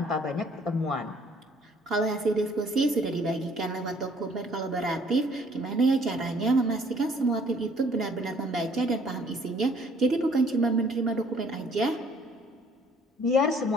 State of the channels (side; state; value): both; normal; correlation 0.60